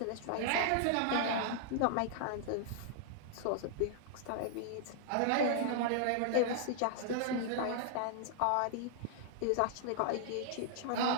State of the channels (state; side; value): different; both; correlation -0.01